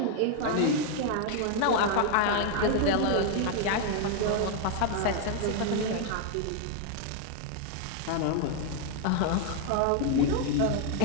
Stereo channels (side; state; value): both; different; correlation 0.00